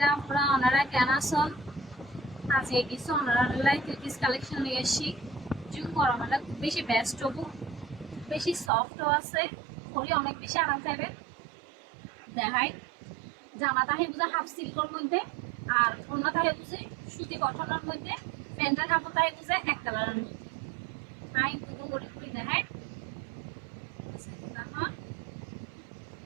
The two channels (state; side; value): drops out; left; at 8.7 s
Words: আপনারা ওনারা কেন আছেন? আজকে কিছু ওনারা থ্রিপিস কালেকশন নিয়ে এসেছি। জুম গরম হলে খুব বেশি বেস্ট হবো, বেশি সফটও আছে, পরে অনেক বেশি আরাম পাইবেন। দেখাই জামা তাহে বুঝে হাফ সিল্কের মধ্যে, আর অন্য তাহে বুঝে সুতি কটনের মধ্যে, প্যান্টের কাপড় তাহে বুঝে এক কালারের মধ্যে। হাই দুটো করে করে দেখাই।